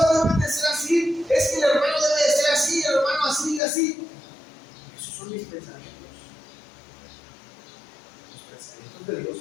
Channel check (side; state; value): right; drops out; at 3.6 s